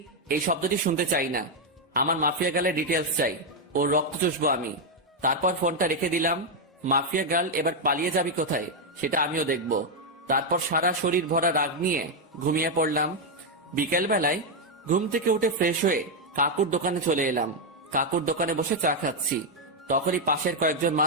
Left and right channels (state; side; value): normal; both; correlation 0.01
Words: এই শব্দটি শুনতে চাই না, আমার মাফিয়া গার্লের ডিটেলস চাই, ওর রক্ত চুষবো আমি। তারপর ফোনটা রেখে দিলাম। মাফিয়া গার্ল এবার পালিয়ে যাবি কোথায় সেটা আমিও দেখব। তারপর সারা শরীর ভরা রাগ নিয়ে ঘুমিয়ে পড়লাম। বিকেল বেলায় ঘুম থেকে উঠে ফ্রেশ হয়ে কাকুর দোকানে চলে এলাম। কাকুর দোকানে বসে চা খাচ্ছি, তখনই পাশের কয়েকজন